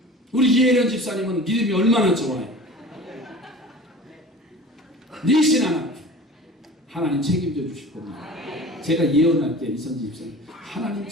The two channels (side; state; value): both; normal; correlation 0.40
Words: 우리 이혜련 집사님은 믿음이 얼마나 좋아요. 니신 하나님 책임져 주실 겁니다. 제가 예언할게요. 이선지 집사님, 하나님